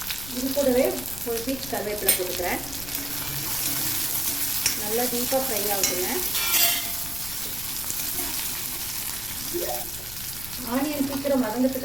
இது கூடவே ஒரு பீச் கருவேப்பிலை போட்டுக்கிறேன். நல்லா டீப்பாக ஃப்ரை ஆகுதுங்க. ஆனியன் சீக்கிரம்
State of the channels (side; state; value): left; noise; rumble, 13 dB below the sound